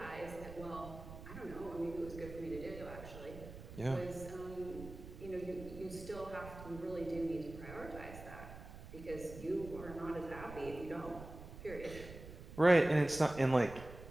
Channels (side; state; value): right; noise; rumble, 13 dB below the sound